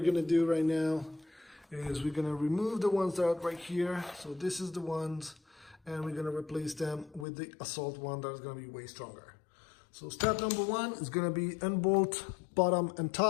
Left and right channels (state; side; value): drops out; right; at 7.2 s